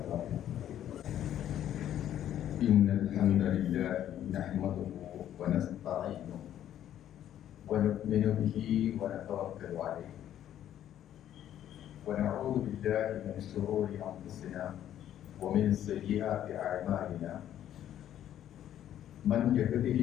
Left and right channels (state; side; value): quieter; right; 11.1 dB